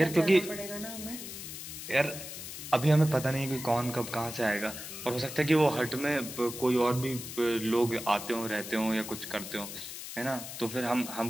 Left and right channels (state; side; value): noise; left; hiss, 9 dB below the sound